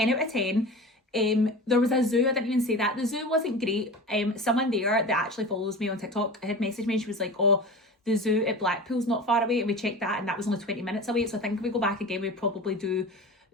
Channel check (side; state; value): both; normal; correlation 0.33